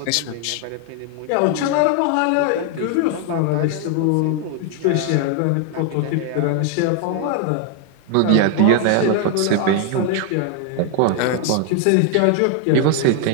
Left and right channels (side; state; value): both; different; correlation 0.00